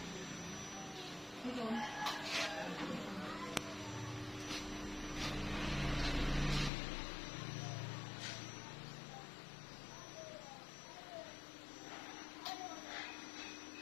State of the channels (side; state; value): right; drops out; at 6.7 s